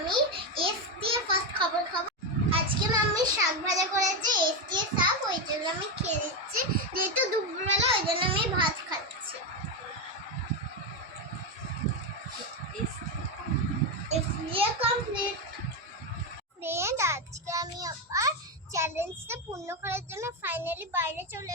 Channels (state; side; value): normal; both; correlation 0.09